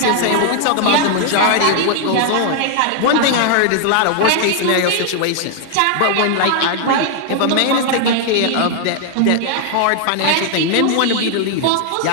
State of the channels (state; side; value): different; both; correlation 0.00